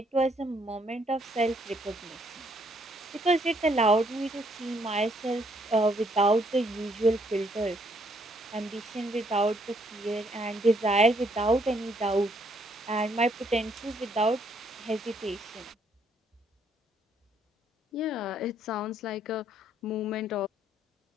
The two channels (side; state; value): both; normal; correlation 0.69